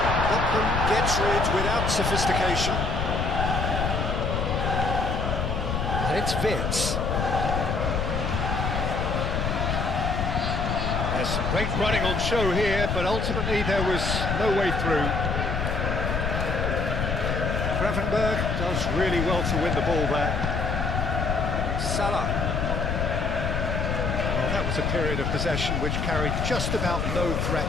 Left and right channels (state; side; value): noise; left; rumble, 1 dB below the sound